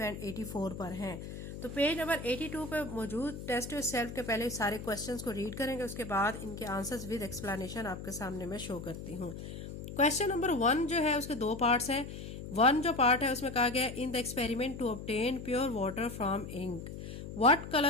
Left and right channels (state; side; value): noise; left; hum, 9 dB below the sound